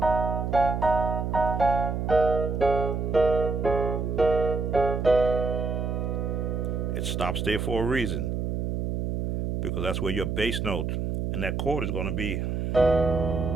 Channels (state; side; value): noise; right; hum, 1 dB below the sound